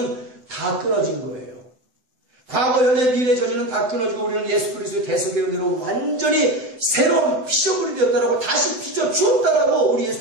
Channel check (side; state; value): left; late; 7.9 ms